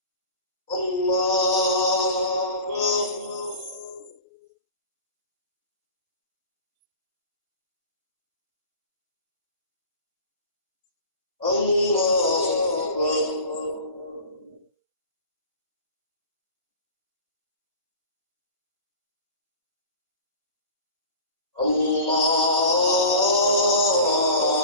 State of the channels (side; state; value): both; inverted; correlation -0.36